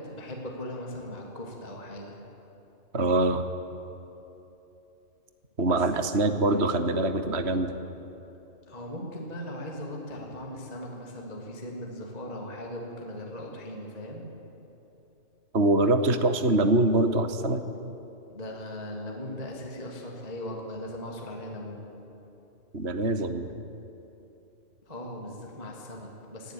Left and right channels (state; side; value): late; left; 3.0 ms